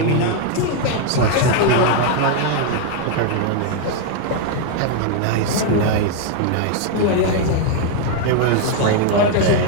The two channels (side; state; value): both; different; correlation 0.00